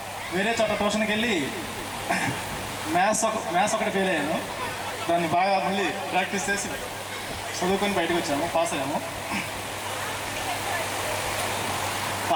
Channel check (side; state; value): both; identical; correlation 1.00